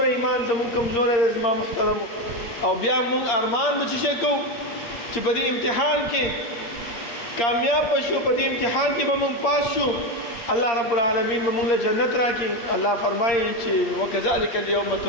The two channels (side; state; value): right; late; 8.6 ms